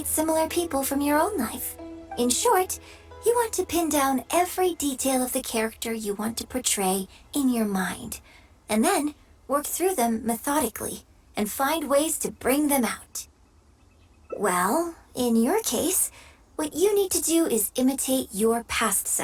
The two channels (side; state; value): both; identical; correlation 1.00